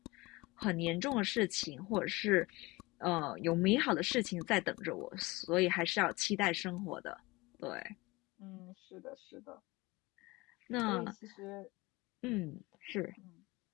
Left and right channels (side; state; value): right; quieter; 22.5 dB